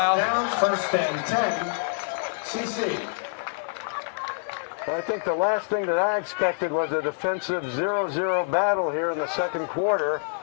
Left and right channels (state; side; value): silent; right; digital silence